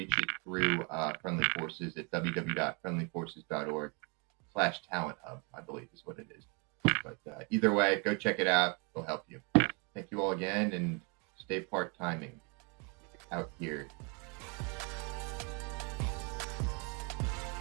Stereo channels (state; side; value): quieter; left; 33.2 dB